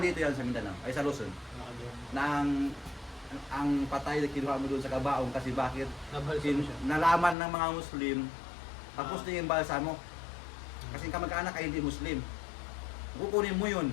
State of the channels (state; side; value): drops out; right; at 7.4 s